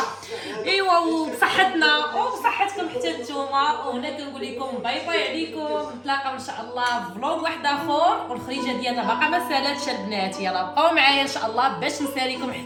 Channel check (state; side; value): identical; both; correlation 1.00